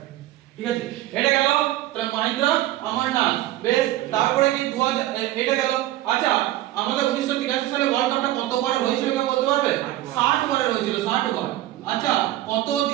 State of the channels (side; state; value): left; quieter; 15.1 dB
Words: ঠিক আছে এটা গেল তাহলে মহেন্দ্র অমরনাথ বেশ তারপরে কি 2000 এটা গেল আচ্ছা আমাদের 1983 সালে ওয়ার্ল্ড কাপটা কতবার হয়েছিল কেউ বলতে পারবে 60 বারে হয়েছিল 60 বার আচ্ছা